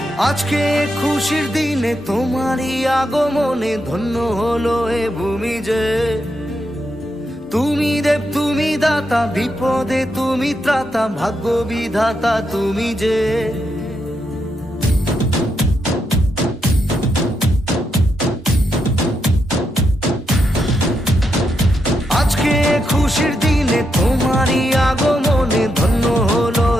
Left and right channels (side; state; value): both; normal; correlation 0.82